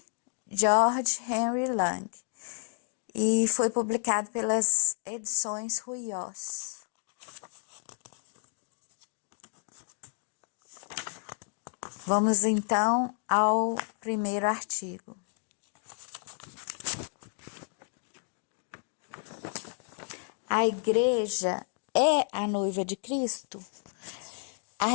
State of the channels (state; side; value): silent; right; 57 dB below the other